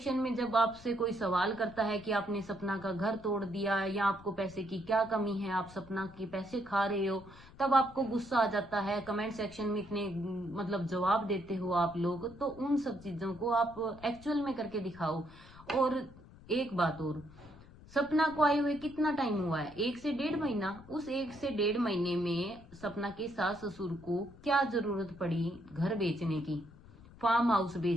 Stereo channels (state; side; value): noise; left; rumble, 21 dB below the sound